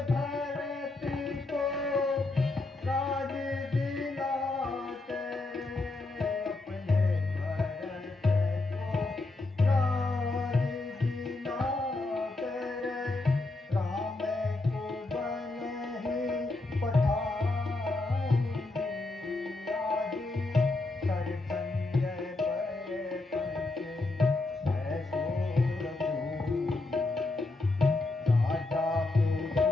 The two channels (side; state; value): right; quieter; 3.1 dB